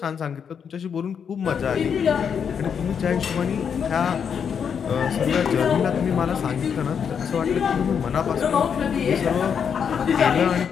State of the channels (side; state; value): right; quieter; 7.2 dB